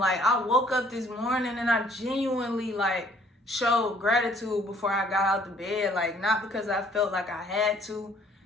I woke up this morning and I genuinely like showed gratitude before I got out the bed. Like, not because I felt like I had to,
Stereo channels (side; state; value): both; normal; correlation 0.59